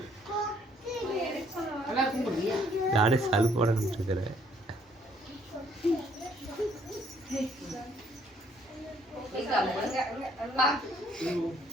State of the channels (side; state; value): both; normal; correlation 0.65